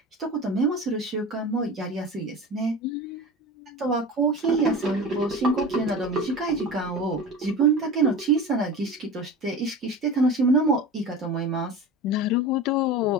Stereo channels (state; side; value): normal; both; correlation 0.32